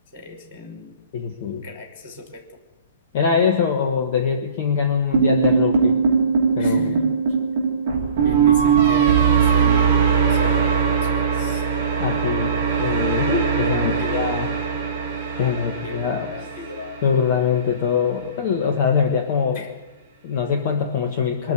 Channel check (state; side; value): inverted; both; correlation -0.44